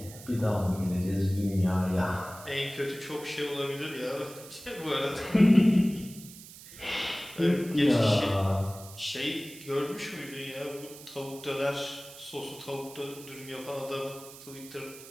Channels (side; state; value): right; noise; hiss, 17 dB below the sound